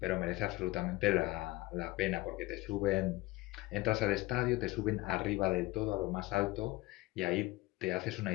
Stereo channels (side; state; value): right; quieter; 19.9 dB